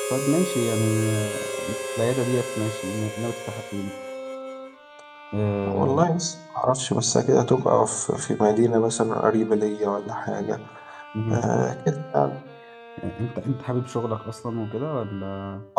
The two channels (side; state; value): both; identical; correlation 1.00